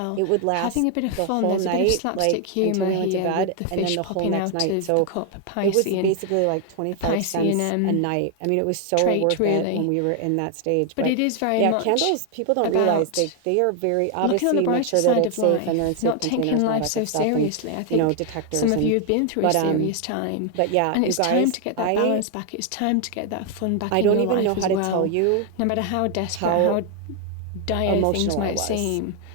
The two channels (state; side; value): different; both; correlation 0.00